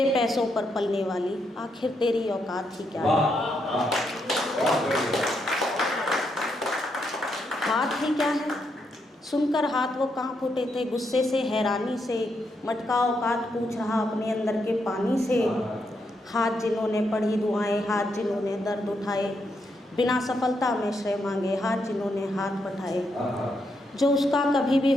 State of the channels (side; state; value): both; normal; correlation 0.80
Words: पैसों पर पलने वाली आखिर तेरी औकात ही क्या है, हाथ ही क्या है। सुनकर हाथ वो कांप उठे थे गुस्से से हैरानी से, मटका औकात पूछ रहा अपने अंदर के पानी से, हाथ जिन्होंने पढ़ी दुआएं, हाथ जिन्होंने दर्द उठाए, बिना सफलता में श्रेय मांगे, हाथ जिन्होंने हाथ बढ़ाए, जो उसका कभी भी